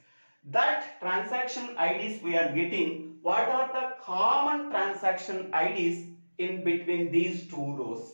That transaction IDs we are getting. What are the common transaction IDs in between these two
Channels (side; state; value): both; inverted; correlation -1.00